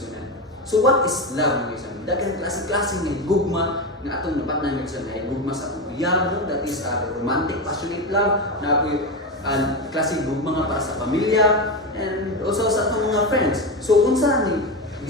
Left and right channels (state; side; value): normal; both; correlation 0.16